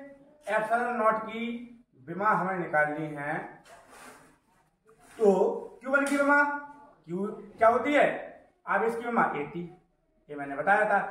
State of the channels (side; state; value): both; identical; correlation 1.00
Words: एप्सिलॉन नॉट की विमा हमें निकालनी है तो Q1 की विमा Q क्या होती है, आवेश की विमा 80, ये मैंने बताया